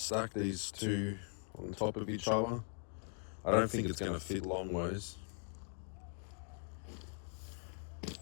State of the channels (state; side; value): silent; right; 51 dB below the other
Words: these two on top of each other. I don't think it's gonna fit long ways.